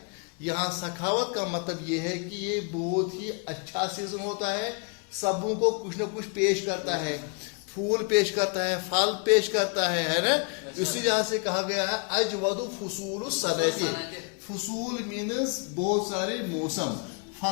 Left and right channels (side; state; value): right; quieter; 35.6 dB